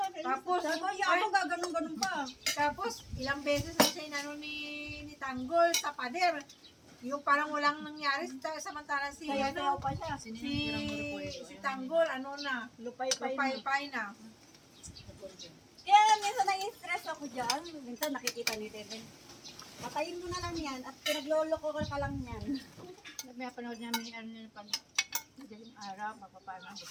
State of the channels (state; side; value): identical; both; correlation 1.00